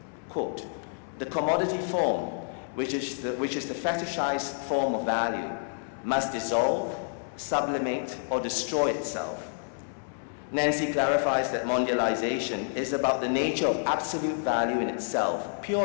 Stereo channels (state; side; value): silent; right; digital silence